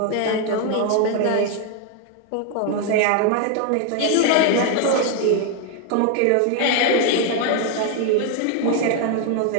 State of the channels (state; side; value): different; both; correlation 0.00